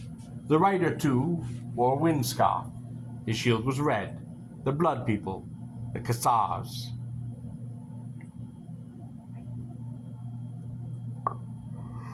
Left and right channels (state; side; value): identical; both; correlation 1.00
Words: The rider, too, wore a wind scarf. His shield was red. The blood people, the Kassars.